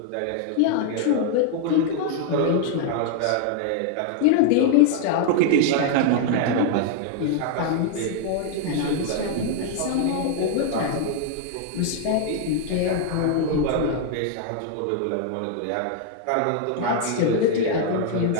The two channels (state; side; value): different; both; correlation 0.00